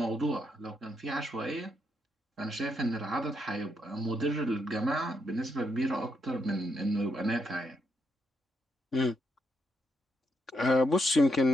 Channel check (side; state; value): both; normal; correlation 0.79